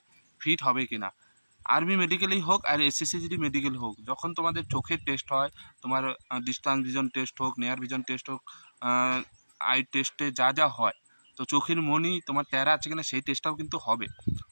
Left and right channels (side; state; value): both; inverted; correlation -1.00